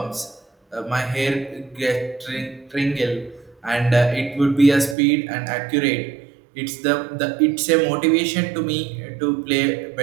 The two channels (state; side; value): drops out; left; at 5.0 s